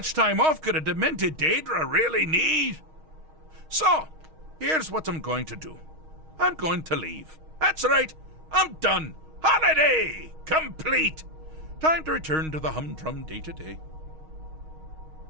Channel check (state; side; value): late; left; 6.4 ms